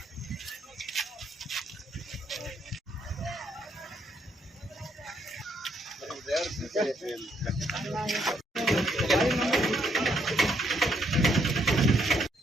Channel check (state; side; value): normal; both; correlation 0.72